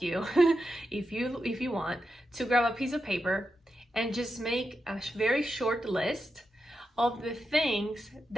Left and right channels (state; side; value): normal; both; correlation 0.87